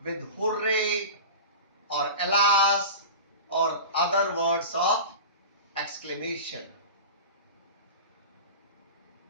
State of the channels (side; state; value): both; inverted; correlation -0.31